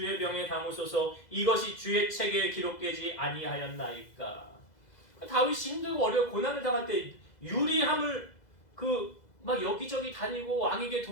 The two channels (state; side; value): late; right; 2.0 ms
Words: 병에 담으소서 이것이 주의 책에 기록되지 아니하였나이까. 다윗이 힘들고 어려워 고난을 당할 때 유리함을 막 여기저기 다니고 왕에게